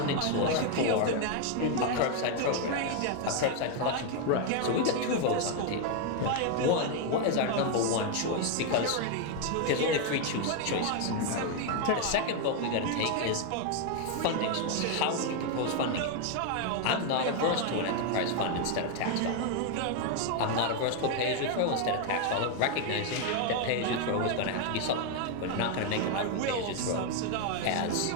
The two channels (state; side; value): different; both; correlation 0.01